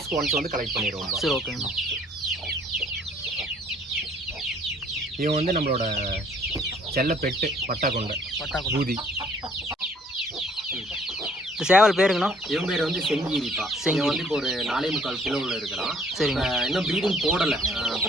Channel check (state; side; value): normal; both; correlation 0.60